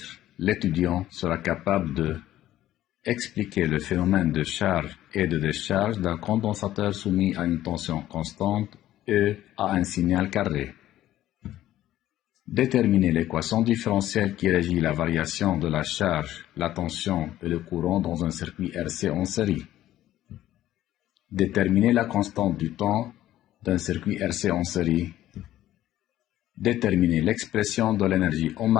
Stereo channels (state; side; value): quieter; right; 13.6 dB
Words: l'étudiant sera capable de expliquer le phénomène de charge et de décharge d'un condensateur soumis à une tension constante E à un signal carré. Déterminer l'équation différentielle qui régit la variation de la charge, la tension et le courant dans un circuit RC en série. Déterminer la constante du temps d'un circuit RC en série. Déterminer l'expression de l'énergie